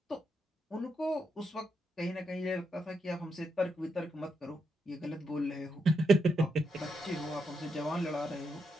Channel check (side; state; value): both; normal; correlation 0.82